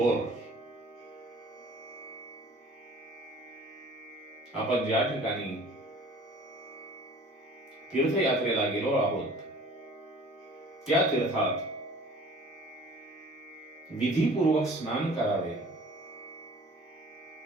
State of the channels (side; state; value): both; normal; correlation 0.48